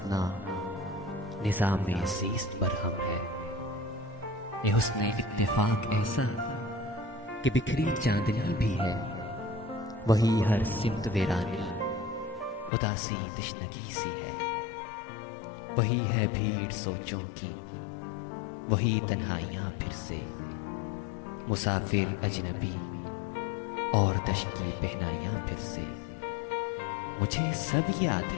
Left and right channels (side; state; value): right; drops out; at 12.7 s